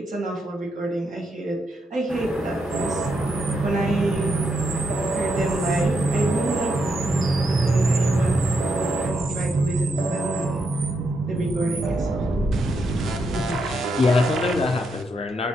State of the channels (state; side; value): normal; both; correlation 0.81